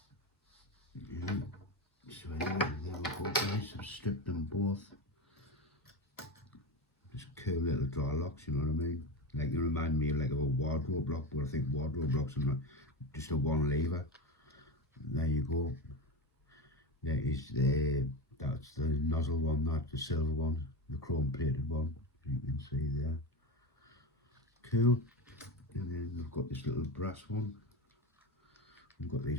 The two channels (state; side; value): normal; both; correlation 0.21